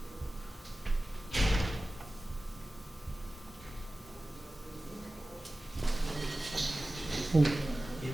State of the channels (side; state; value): both; normal; correlation 0.96